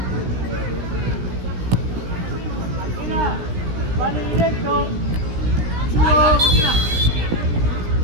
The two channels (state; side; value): late; left; 17 ms